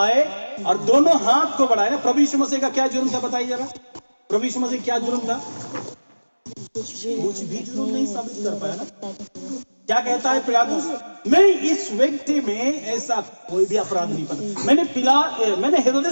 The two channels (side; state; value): both; inverted; correlation -1.00